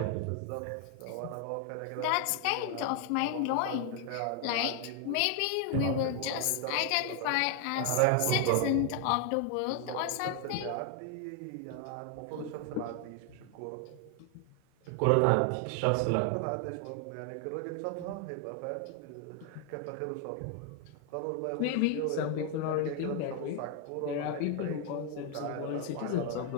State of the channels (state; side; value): different; both; correlation 0.00